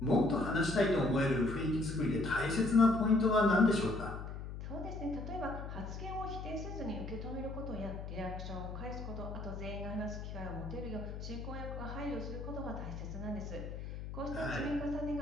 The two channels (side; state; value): left; noise; hum, 8 dB below the sound